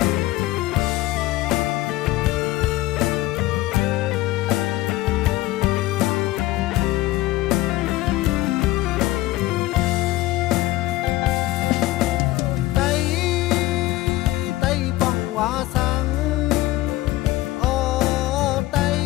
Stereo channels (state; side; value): quieter; right; 17.2 dB